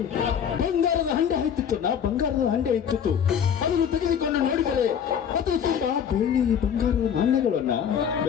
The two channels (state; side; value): quieter; right; 8.1 dB